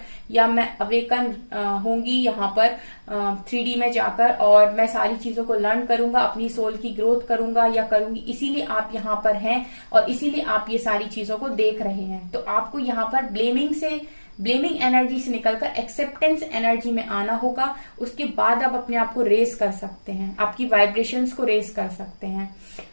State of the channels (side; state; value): both; inverted; correlation -1.00